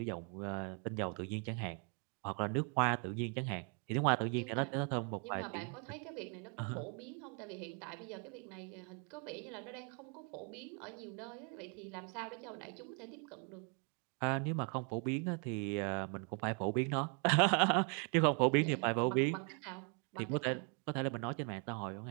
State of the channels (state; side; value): quieter; left; 36.7 dB